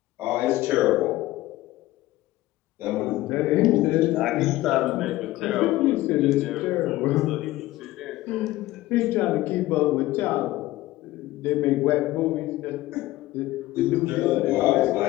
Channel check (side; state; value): right; quieter; 17.0 dB